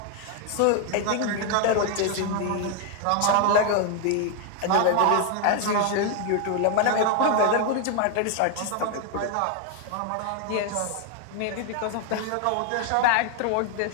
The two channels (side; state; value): both; different; correlation 0.01